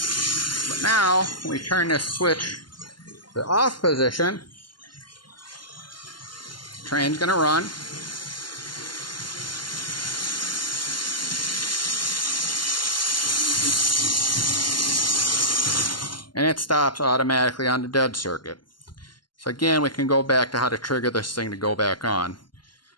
But now, when we turn this switch to off position, the train's going to run. And it stops automatically on the dead circuit. So again, we can go back to how to trigger this thing to go back on.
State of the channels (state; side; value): late; right; 0.71 ms